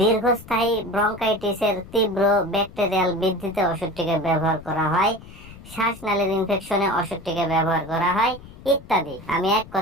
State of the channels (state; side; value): noise; left; rumble, 18 dB below the sound